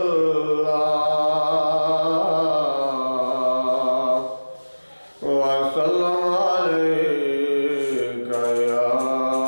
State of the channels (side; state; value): both; inverted; correlation -1.00